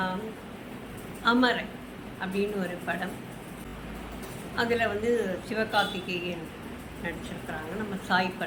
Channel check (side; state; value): both; identical; correlation 1.00